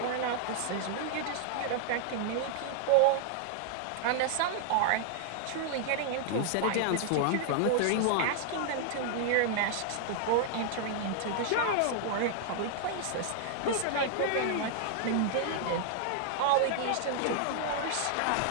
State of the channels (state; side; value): different; both; correlation -0.01